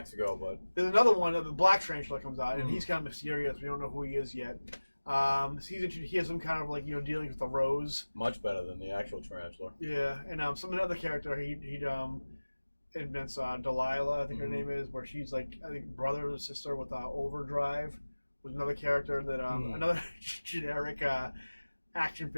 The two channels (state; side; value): inverted; both; correlation -1.00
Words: but... There's another one, the black tarantula comes out, and he's kind of mysterious. We don't know who he is yet. He has some kind of dealings with the Rose. Much better than the actual tarantula. Yeah, and another character he'd invents Delilah, I think her name is, where she's I think brother or sister with Overdrive. Was another character that another generic action